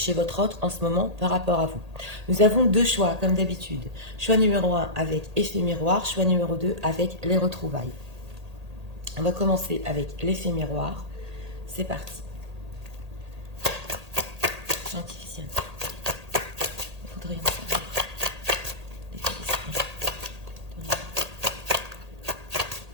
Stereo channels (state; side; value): late; left; 1.8 ms